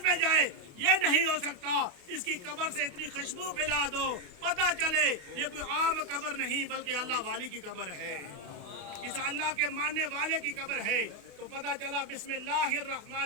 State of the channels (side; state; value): left; late; 28 ms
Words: میں جائے، یہ نہیں ہو سکتا۔ اس کی قبر سے اتنی خوشبو پھیلا دو، پتہ چلے یہ کوئی عام قبر نہیں بلکہ اللہ والی کی قبر ہے، اس اللہ کے ماننے والے کی قبر ہے۔ تو پتہ چلا بسم اللہ الرحمن